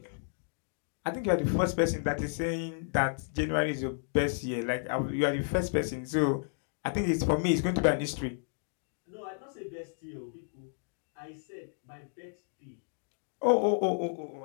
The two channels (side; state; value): right; silent; digital silence